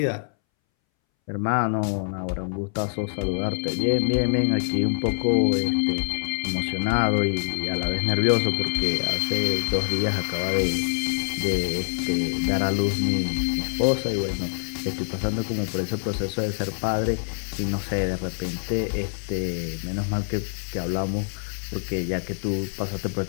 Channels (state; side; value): silent; right; 61 dB below the other